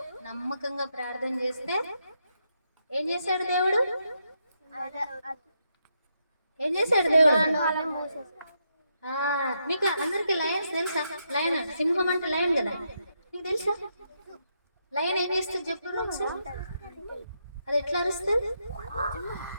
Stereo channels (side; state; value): both; inverted; correlation -0.80